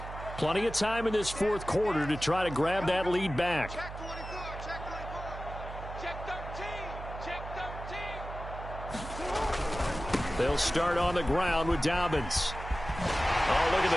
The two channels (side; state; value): right; noise; hum, 10 dB below the sound